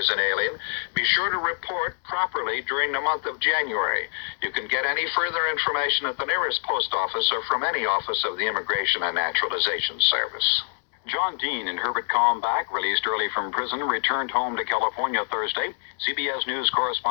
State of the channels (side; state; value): right; silent; 62 dB below the other